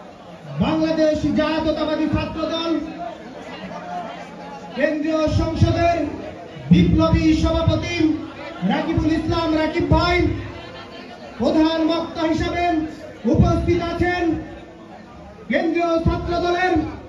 বাংলাদেশ জাতীয়তাবাদী ছাত্র দল কেন্দ্রীয় সংসদের বিপ্লবী সভাপতি রাকিবুল ইসলাম রাকিব ভাই। প্রধান বক্তা হিসাবে উপস্থিত আছেন কেন্দ্রীয় ছাত্র দলের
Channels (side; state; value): both; identical; correlation 1.00